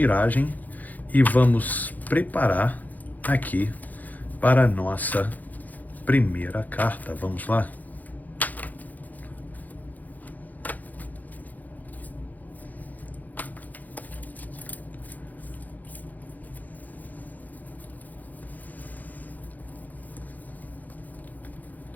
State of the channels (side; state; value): right; late; 0.081 ms